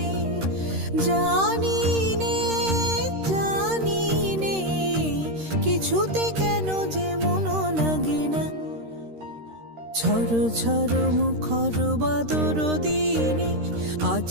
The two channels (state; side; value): late; left; 13 ms